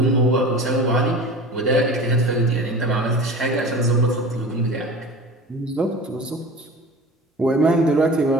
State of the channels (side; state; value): both; normal; correlation 0.36